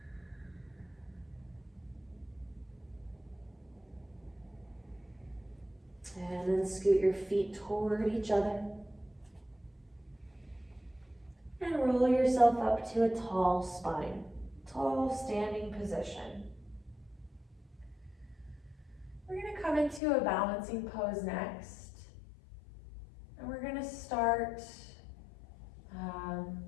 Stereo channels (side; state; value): right; drops out; at 20.0 s